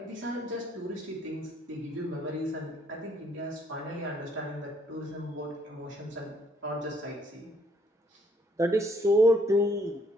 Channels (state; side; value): normal; both; correlation 0.66